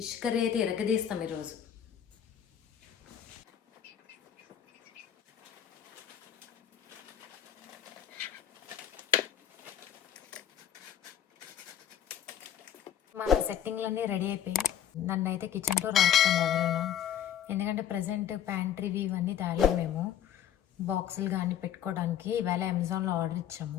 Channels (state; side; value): quieter; right; 9.8 dB